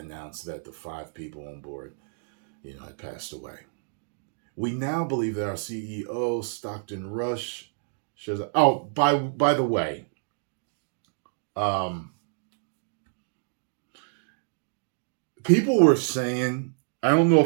that the 5 people on board, had passed away. We now believe that our CEO, Stockton Rush, shows up. Oh, by the way, people were saying, I don't know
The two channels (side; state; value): left; silent; digital silence